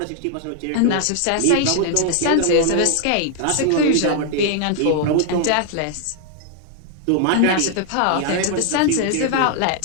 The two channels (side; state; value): both; different; correlation 0.00